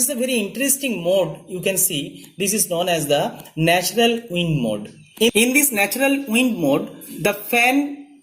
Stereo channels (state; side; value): identical; both; correlation 1.00